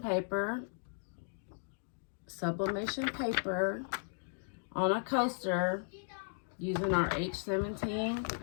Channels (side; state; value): right; silent; digital silence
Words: on a coaster using our H17